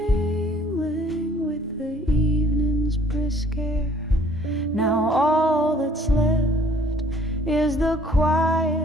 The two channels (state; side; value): normal; both; correlation 0.57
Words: with the evening's brisk air. Now all that's left is the